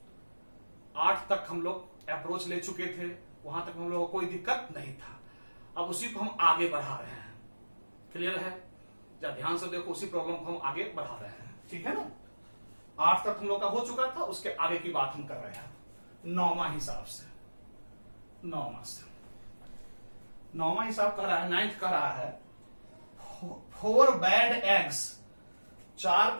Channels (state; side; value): inverted; both; correlation -1.00